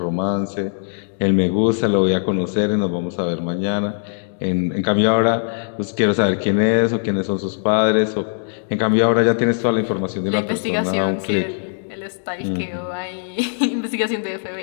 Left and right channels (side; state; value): right; silent; 66 dB below the other